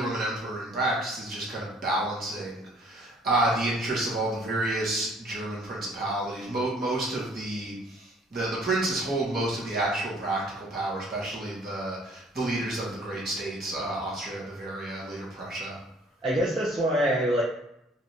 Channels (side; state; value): both; normal; correlation 0.57